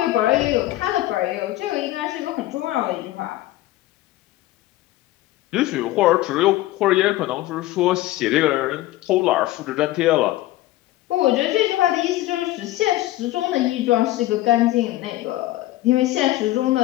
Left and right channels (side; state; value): right; quieter; 16.4 dB